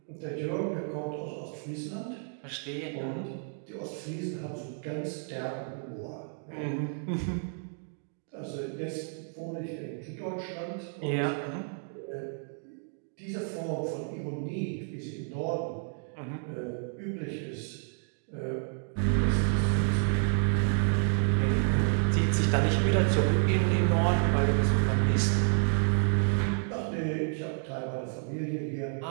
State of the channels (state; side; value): silent; left; 58 dB below the other